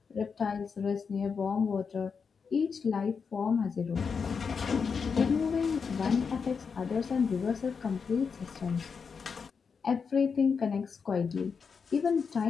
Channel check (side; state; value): right; quieter; 5.8 dB